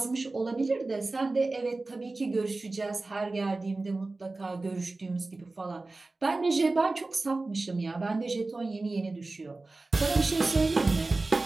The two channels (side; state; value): left; quieter; 3.3 dB